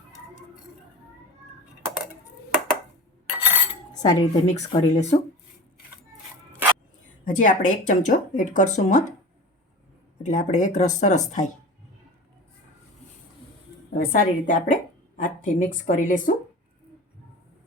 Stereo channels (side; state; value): both; normal; correlation 0.34